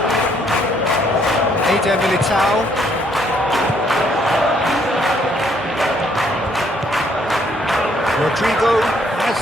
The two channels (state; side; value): normal; both; correlation 0.68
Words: Eder Militao. Rodrigo